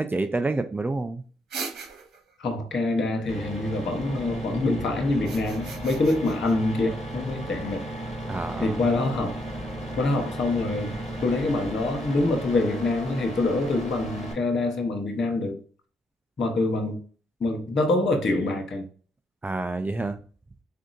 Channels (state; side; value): normal; both; correlation 0.75